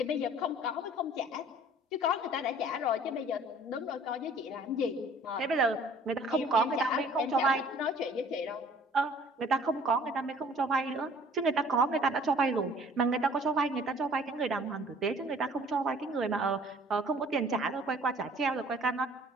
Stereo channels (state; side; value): normal; both; correlation 0.53